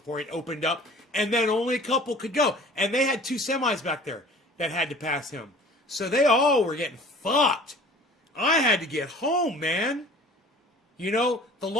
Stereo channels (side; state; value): both; normal; correlation 0.46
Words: it opened up. And then only a couple could go. And they had 2 semis back there that had to pass him. So they all were getting fucked. I had to get home, man. You know, the